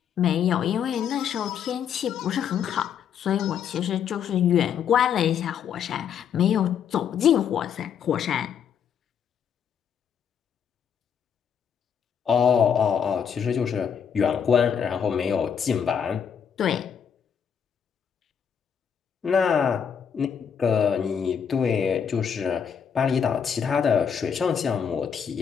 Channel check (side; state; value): right; quieter; 7.7 dB